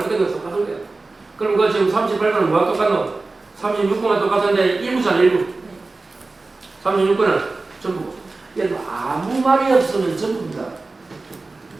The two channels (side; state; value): left; quieter; 3.5 dB